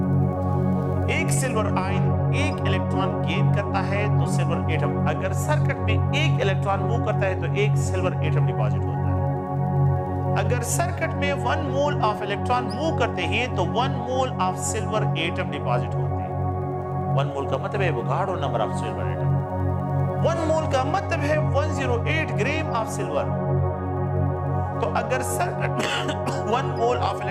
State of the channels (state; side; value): identical; both; correlation 1.00